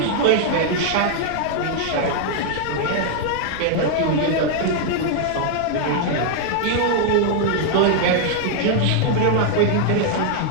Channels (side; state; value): both; different; correlation 0.00